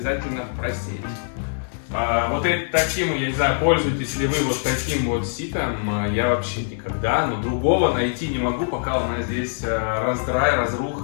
просеять. Вот таким, я не знаю, пользуетесь ли вы вот таким вот ситом, я вообще никогда, но другого найти не могу, пока у нас здесь раздрай,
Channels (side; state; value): right; silent; digital silence